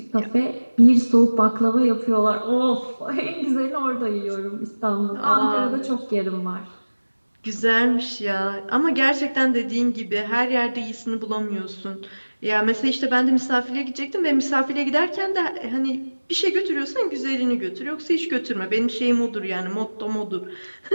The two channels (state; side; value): inverted; both; correlation -1.00